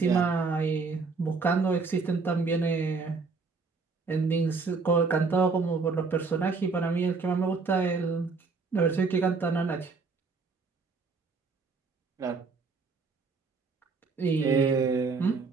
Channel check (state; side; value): quieter; left; 4.4 dB